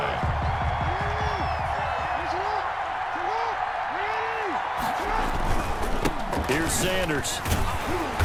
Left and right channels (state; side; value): identical; both; correlation 1.00